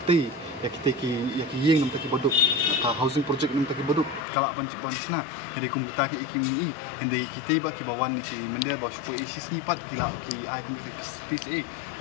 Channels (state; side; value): drops out; right; at 4.2 s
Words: ti ya kita yeng nam taki boduk ka housing project nam taki boduk kala ban sina jadi kum kita ki ikimi hende kita ba ki bawan ni ki mende ba supo isis ni pat kila ki ai kum ki